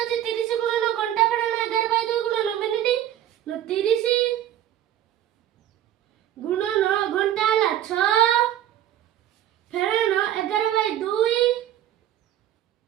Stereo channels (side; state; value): left; quieter; 11.8 dB